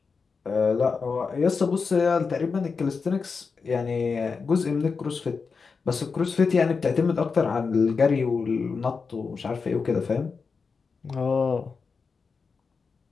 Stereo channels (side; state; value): right; quieter; 5.0 dB